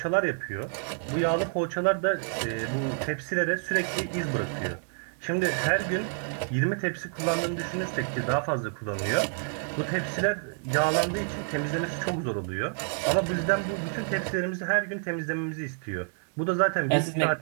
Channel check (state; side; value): silent; left; 59 dB below the other